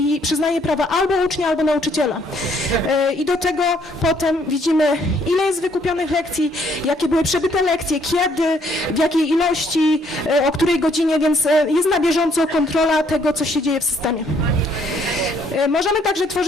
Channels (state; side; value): normal; both; correlation 0.67